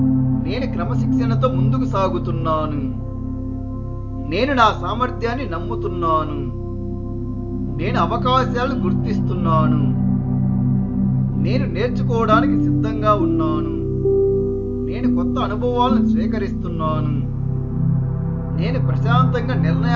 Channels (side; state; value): both; identical; correlation 1.00